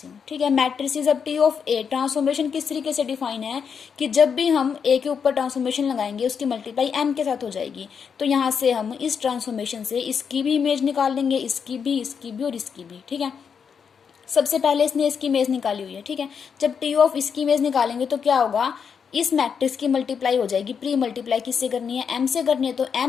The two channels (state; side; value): quieter; right; 6.7 dB